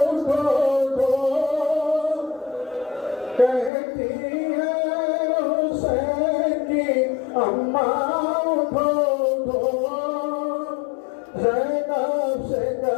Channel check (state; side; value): drops out; right; at 3.7 s